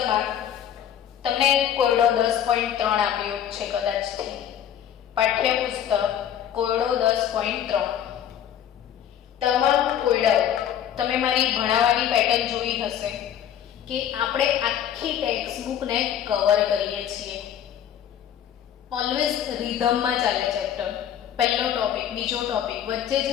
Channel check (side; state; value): right; quieter; 10.0 dB